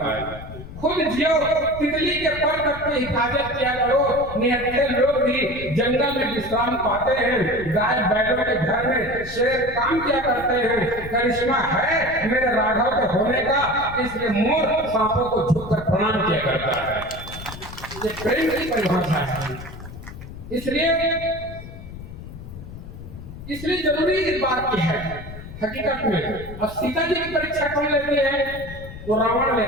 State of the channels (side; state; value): left; noise; rumble, 13 dB below the sound